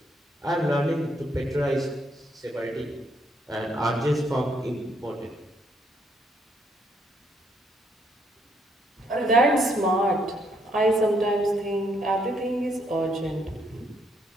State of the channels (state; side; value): normal; both; correlation 0.72